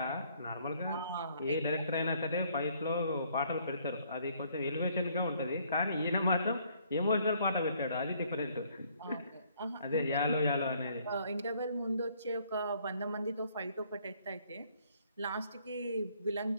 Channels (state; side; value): inverted; both; correlation -0.64